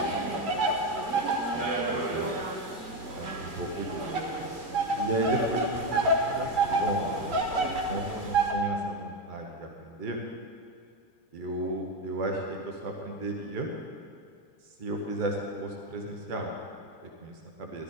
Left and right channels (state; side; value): late; right; 2.4 ms